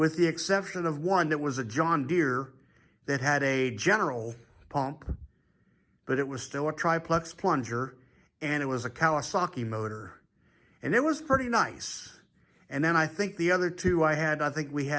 the exception of one that was a John Deere that had a general pump, but it was still a triplex plunger, and it was a Kawasaki motor, and it was pretty nice. And then I think the other 2 we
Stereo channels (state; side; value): identical; both; correlation 1.00